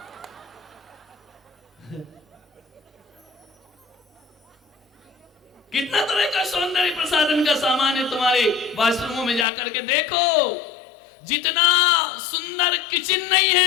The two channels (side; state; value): right; drops out; at 9.5 s